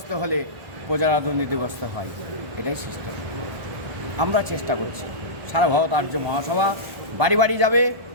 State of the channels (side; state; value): left; late; 1.4 ms